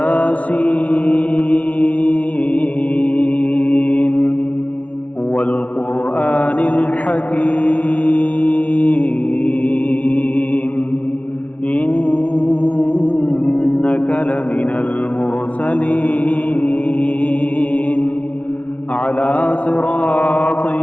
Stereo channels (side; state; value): right; late; 0.066 ms